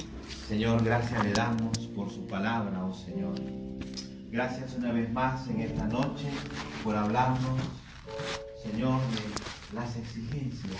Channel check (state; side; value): identical; both; correlation 1.00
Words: Señor, gracias le damos por su palabra, oh Señor. Gracias una vez más en esta noche por hablarnos, Señor, de las exigencias